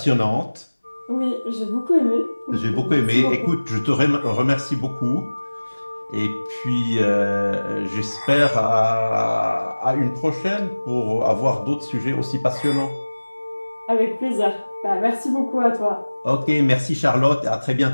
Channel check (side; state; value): both; inverted; correlation -1.00